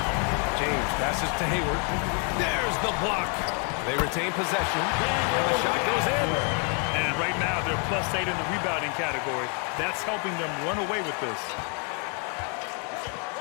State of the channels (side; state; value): right; quieter; 39.1 dB